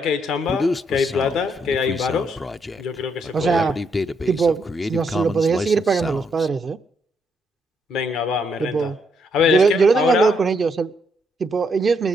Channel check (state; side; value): normal; both; correlation 0.75